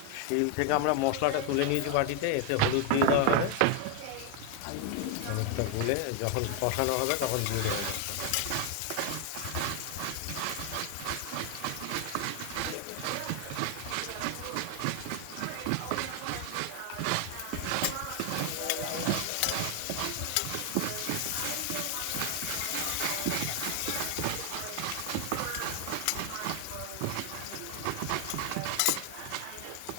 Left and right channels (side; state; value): both; different; correlation 0.00